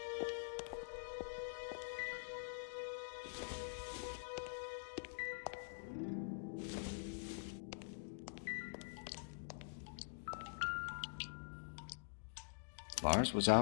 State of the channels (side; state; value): right; silent; digital silence